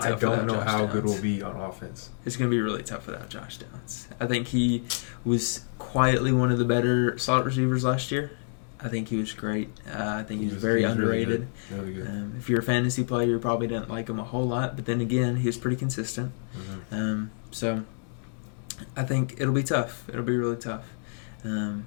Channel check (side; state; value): right; silent; digital silence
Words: I don't know how good we'll we'll be on offense. It's going to be really tough without Josh Downs. I think he was quietly one of the better slot receivers last year. I think he was great. I think he was very underrated. Really good. If you're a fantasy player, you probably didn't like him a whole lot. But then again, he was pretty consistent. So I think it'll be tough. It'll be really tough.